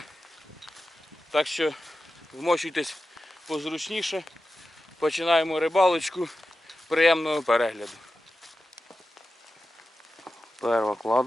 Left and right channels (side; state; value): both; normal; correlation 0.93